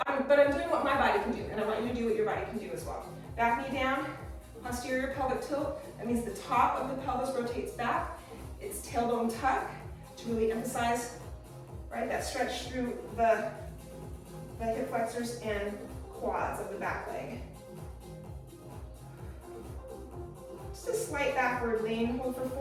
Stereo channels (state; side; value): identical; both; correlation 1.00